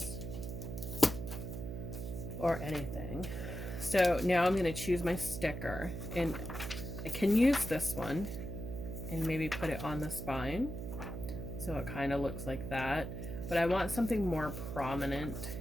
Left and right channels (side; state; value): right; noise; hum, 6 dB below the sound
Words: or anything. So now I'm going to choose my sticker, and I can use this one and maybe put it on the spine so it kind of looks like that, but I want something more prominent.